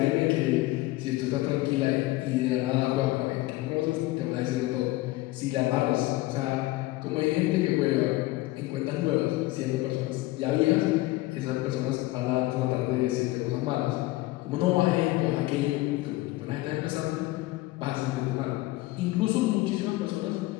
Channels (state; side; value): quieter; right; 18.8 dB